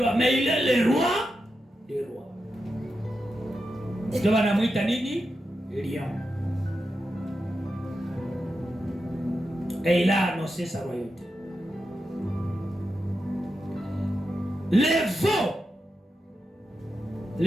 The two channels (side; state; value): both; normal; correlation 0.89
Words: mais il est le roi des rois. Ndio wanamuita nini? Lion. Et il a annoncé sa royauté.